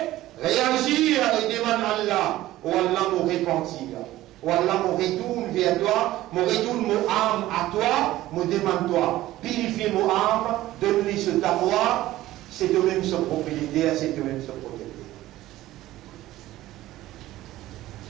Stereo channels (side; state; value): left; quieter; 15.6 dB